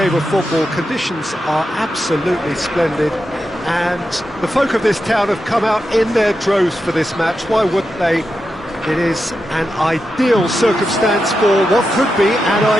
of football. Conditions are absolutely splendid and the folk of this town have come out in their droves for this match. Why wouldn't they? It is an ideal circumstance for what could be an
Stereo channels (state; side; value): normal; both; correlation 0.88